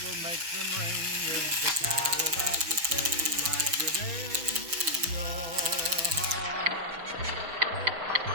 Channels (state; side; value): late; left; 6.0 ms